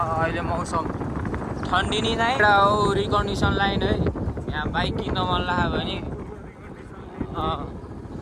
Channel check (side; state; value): both; identical; correlation 1.00